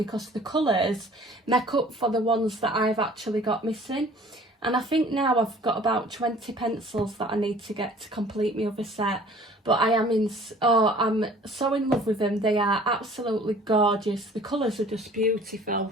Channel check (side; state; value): both; normal; correlation 0.50